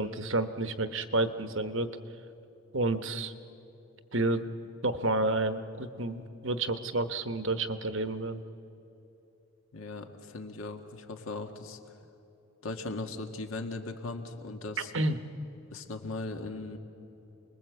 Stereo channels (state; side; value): normal; both; correlation 0.07